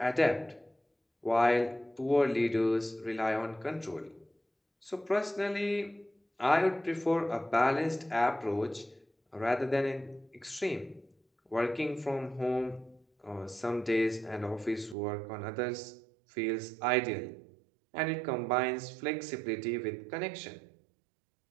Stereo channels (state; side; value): drops out; left; at 15.0 s